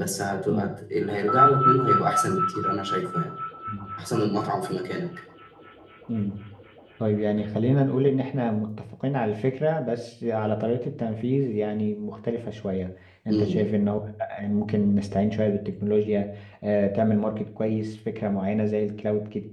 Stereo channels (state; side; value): identical; both; correlation 1.00